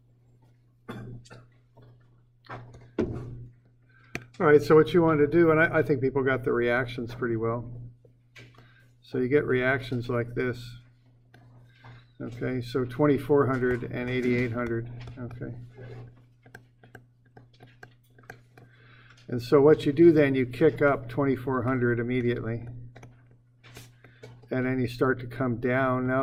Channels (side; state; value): both; identical; correlation 1.00